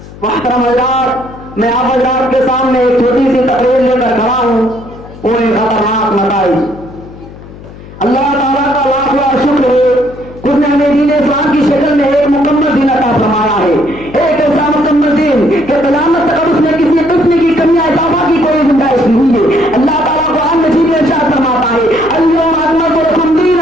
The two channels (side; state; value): left; noise; hum, 17 dB below the sound